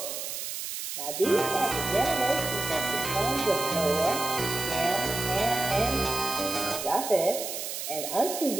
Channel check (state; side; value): noise; right; hiss, 5 dB below the sound